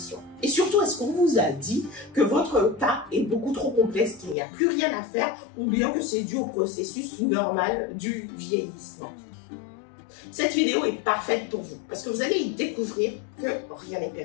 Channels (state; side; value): drops out; right; at 4.4 s